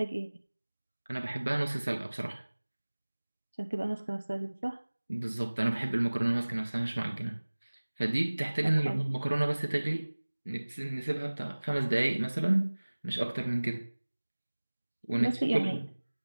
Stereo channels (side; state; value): both; inverted; correlation -1.00